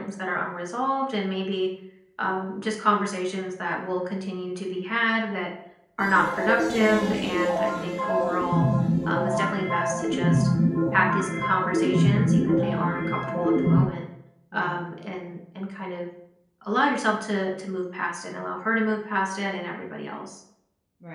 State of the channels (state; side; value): identical; both; correlation 1.00